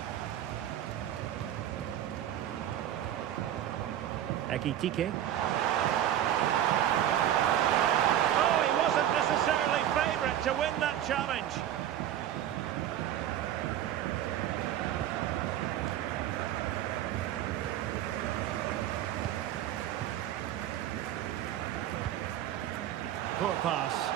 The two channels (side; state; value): left; quieter; 11.5 dB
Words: Ekitike. Oh, he wasn't necessarily favourite to win that challenge. Poor pass.